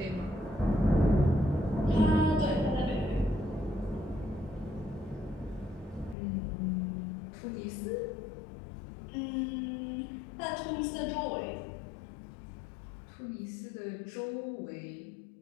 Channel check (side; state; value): right; drops out; at 6.2 s